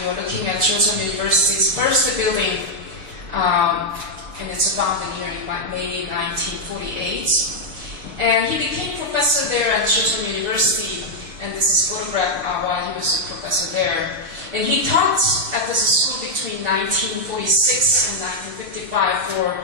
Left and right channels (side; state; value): left; late; 6.6 ms